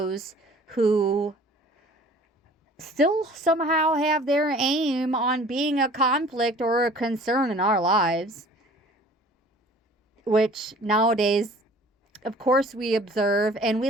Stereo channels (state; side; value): normal; both; correlation 0.49